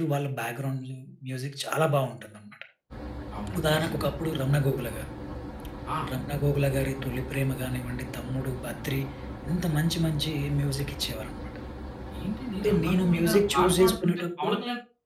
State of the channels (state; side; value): identical; both; correlation 1.00